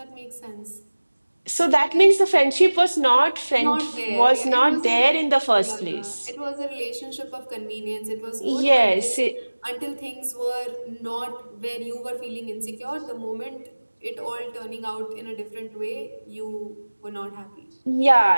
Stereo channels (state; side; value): inverted; both; correlation -1.00